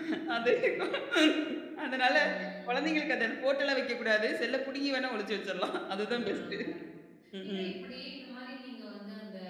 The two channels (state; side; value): identical; both; correlation 1.00